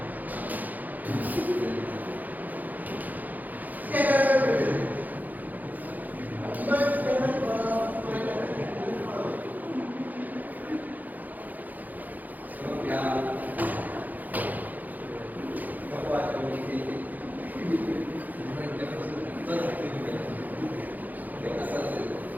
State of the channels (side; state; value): left; late; 0.082 ms